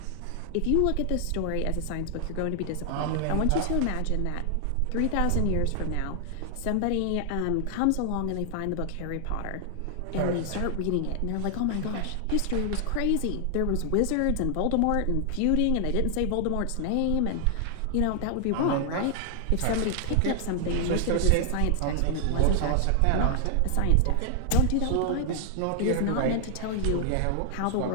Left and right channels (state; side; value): different; both; correlation 0.00